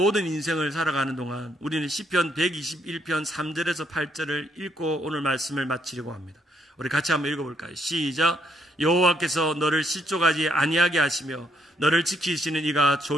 인생을 살아가는 동안 우리는 시편 121편 3절에서 8절을 읽고 오늘 말씀을 마치려고 합니다. 우리 같이 한번 읽어볼까요? 시작. 여호와께서 너를 실족하지 아니하게 하시며 너를 지키시는 이가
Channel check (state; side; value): normal; both; correlation 0.73